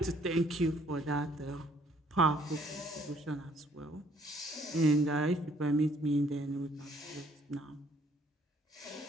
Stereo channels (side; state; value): both; normal; correlation 0.63